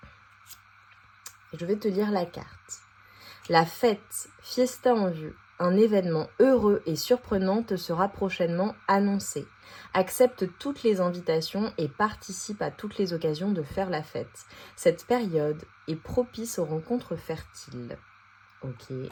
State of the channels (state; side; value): identical; both; correlation 1.00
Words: Je vais te lire la carte. La fête, fiesta en vue, un événement heureux et surprenant te sera prochainement annoncé. Accepte toutes les invitations et participe à toutes les occasions de faire la fête. Cette période est propice aux rencontres fertiles. Ok.